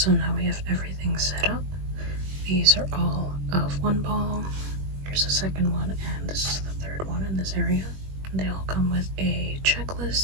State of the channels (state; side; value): late; left; 21 ms